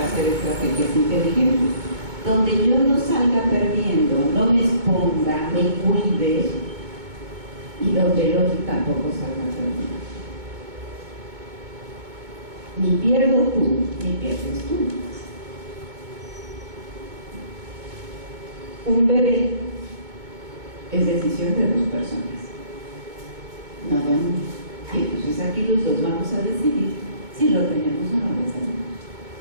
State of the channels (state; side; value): late; left; 2.2 ms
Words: hacer estrategias inteligentes? Donde yo no salga perdiendo, no me exponga, me cuide, y donde el otro tampoco salga perdiendo. Ni pierdo tú, ni pierdes tú. Un bebé es decisión de dos personas. No, y entonces aquí los dos vamos a decidir si lo tenemos o no lo tenemos.